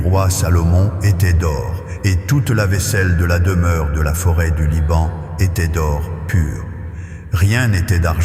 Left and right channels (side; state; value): both; identical; correlation 1.00